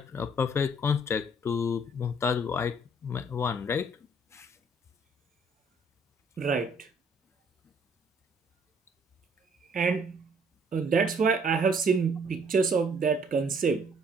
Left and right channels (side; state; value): both; normal; correlation 0.61